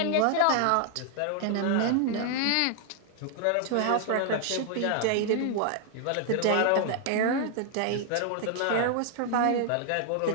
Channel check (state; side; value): different; both; correlation 0.00